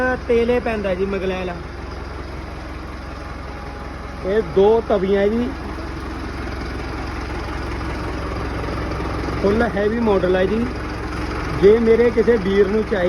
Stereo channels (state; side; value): identical; both; correlation 1.00